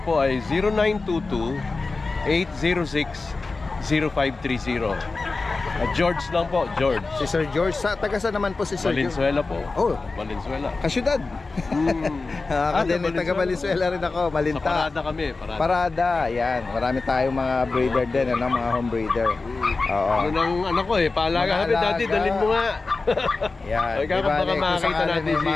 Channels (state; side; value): quieter; right; 3.8 dB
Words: ay 0922-806-0530. George lang po, George. Si Sir George. Taga saan naman po si Sir George? Valenzuela po. Oh, Valenzuela. kasyudad. Taga Valenzuela rin ako, Sa Malinta. parada kami, parada. Parada, yan. Marami tayong mga breeder din, ano, mga home breeder. Oo. Yun ang ano ko paalaga kami, Mga Daddy, alaga. dalhin mo nga. Yan. Ay, baka Bale, kung makakita sakali natin may